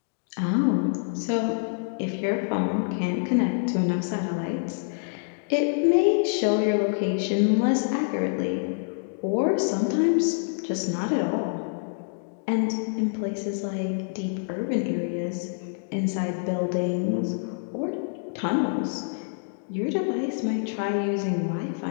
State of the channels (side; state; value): right; silent; digital silence